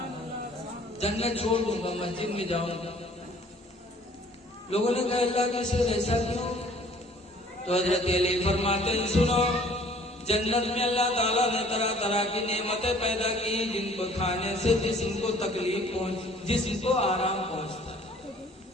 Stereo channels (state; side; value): normal; both; correlation 0.55